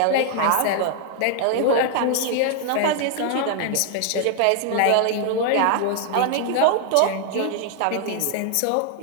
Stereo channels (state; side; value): different; both; correlation 0.00